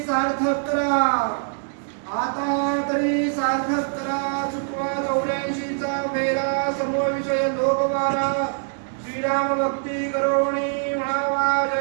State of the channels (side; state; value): left; silent; digital silence